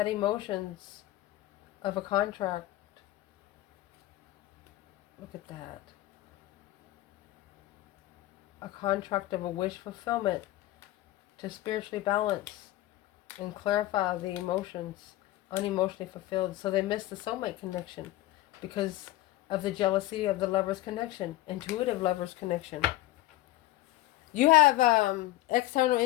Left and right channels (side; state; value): right; quieter; 16.4 dB